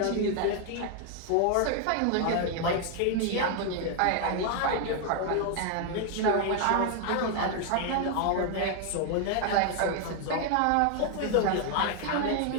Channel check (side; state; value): both; different; correlation 0.00